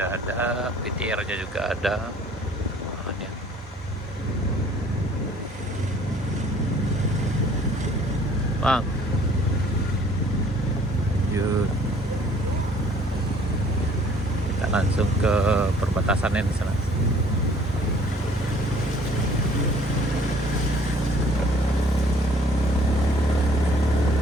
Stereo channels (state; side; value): normal; both; correlation 0.56